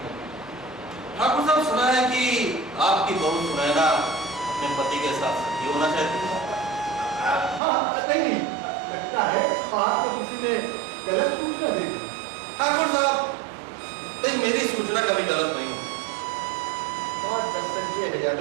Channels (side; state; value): left; drops out; at 7.6 s